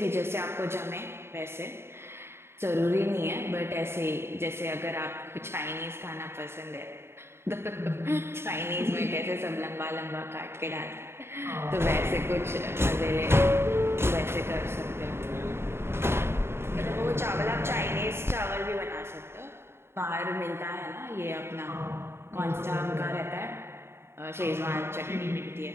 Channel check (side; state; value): left; late; 0.12 ms